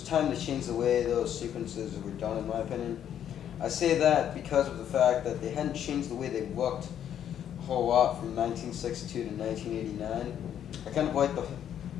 time to change the way those sequences were done, in my opinion. I say that because of the fact that they hadn't changed the way they looked a whole lot from 1962 to 1989. I kind of like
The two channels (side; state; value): right; quieter; 9.8 dB